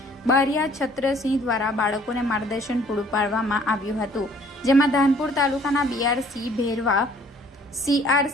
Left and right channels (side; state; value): both; normal; correlation 0.57